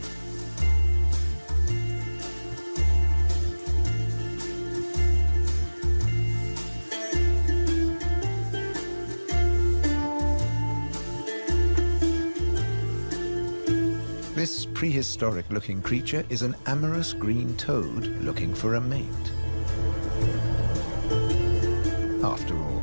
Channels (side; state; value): both; inverted; correlation -1.00